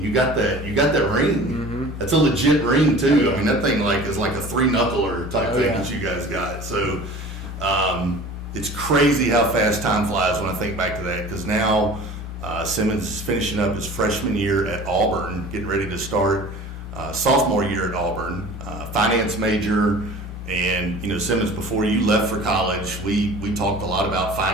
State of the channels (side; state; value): both; normal; correlation 0.42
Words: you got that ring. Mm-hmm. That's a legit ring too. I mean, that thing is like a 3-knuckler type thing that you guys got. So it's crazy how fast time flies when I think back to that, because now Simmons is finishing up his freshman year at Auburn, getting ready to start sophomore year at Auburn, finance major. And Simmons, before you left for college, we talked a lot about